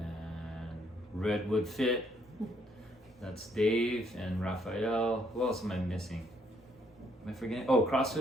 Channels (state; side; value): normal; both; correlation 0.70